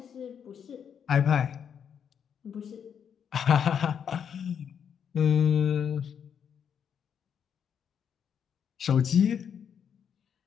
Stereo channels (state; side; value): quieter; right; 7.9 dB